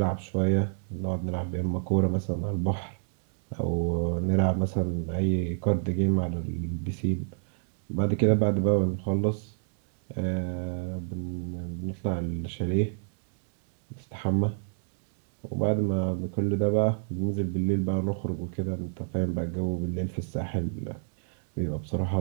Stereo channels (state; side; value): silent; left; digital silence